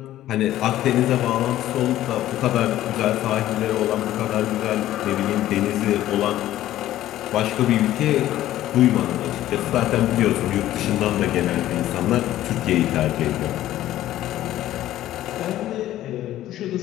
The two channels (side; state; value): right; quieter; 13.8 dB